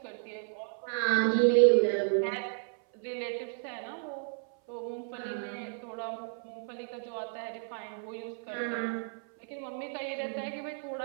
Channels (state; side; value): silent; left; 56 dB below the other